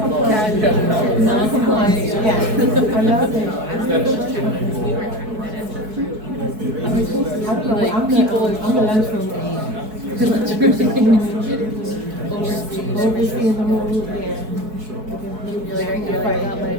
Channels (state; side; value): late; left; 4.6 ms